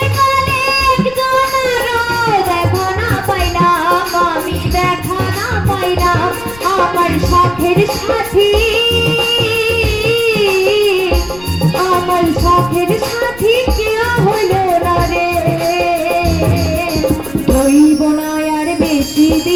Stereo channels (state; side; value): noise; left; rumble, 20 dB below the sound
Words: কালে একজনেরও দেখা না পাইলাম, আমি দেখা না পাইলাম। আমার শখের সাথী, আমার শখের সাথী কেউ হইল না রে, রইব না আর বেশি